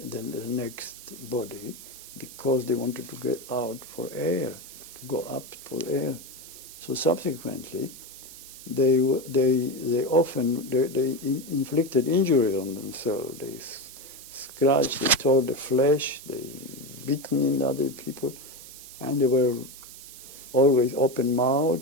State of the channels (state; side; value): noise; right; hiss, 16 dB below the sound